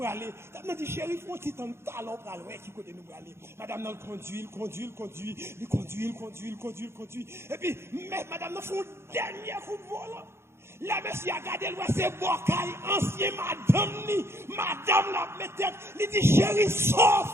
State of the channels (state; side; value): late; left; 0.12 ms